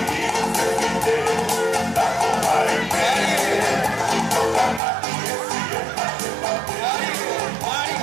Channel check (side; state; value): left; drops out; at 4.8 s